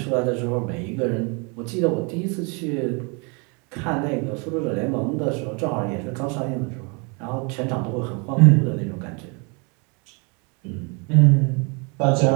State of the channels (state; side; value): quieter; left; 32.7 dB